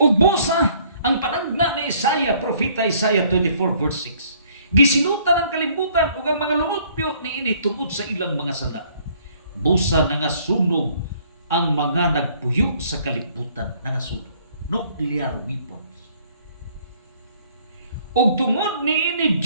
busa ang panagna ni Isaiah, propeta Isaiah 24 verse 6. Gisinutan ang kalibutan ug ang mga lumupyo niini tungod sa ilang mga sala. Busa nangasunog ang mga nagpuyo sa kalibutan, nangasunog. Nuclear weapons. Ug tungod niini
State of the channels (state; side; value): inverted; both; correlation -0.61